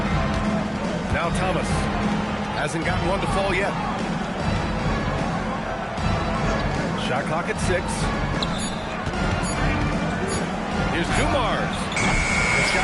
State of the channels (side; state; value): both; identical; correlation 1.00